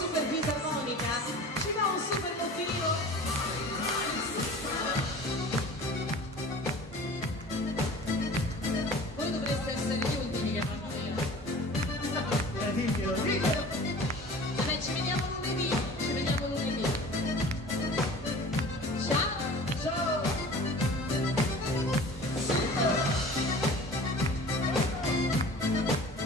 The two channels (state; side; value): normal; both; correlation 0.41